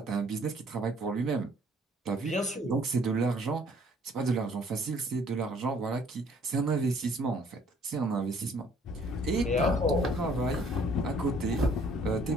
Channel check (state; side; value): normal; both; correlation 0.59